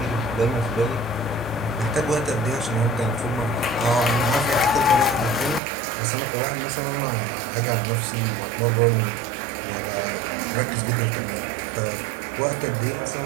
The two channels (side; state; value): left; drops out; at 5.6 s